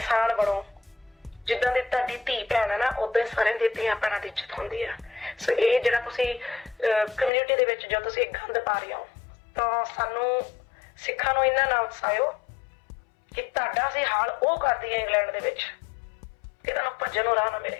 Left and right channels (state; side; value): drops out; right; at 7.3 s